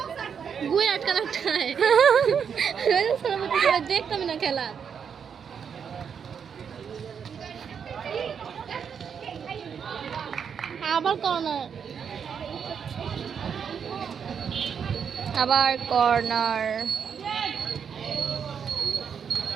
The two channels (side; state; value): left; quieter; 7.1 dB